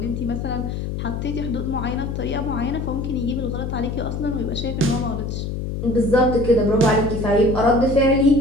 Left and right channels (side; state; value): left; noise; hum, 4 dB below the sound